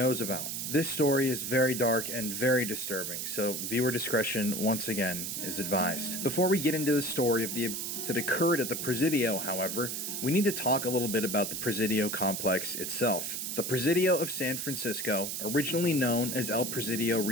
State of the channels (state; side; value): noise; right; hiss, 4 dB below the sound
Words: about. This story is very dark and very disturbing, so viewer discretion, once again, is advised. Before we get into the story of the that occurred at the Presidio, however, we need to talk a little bit about the Presidio complex itself. The Presidio of San Francisco, originally known as El Presidio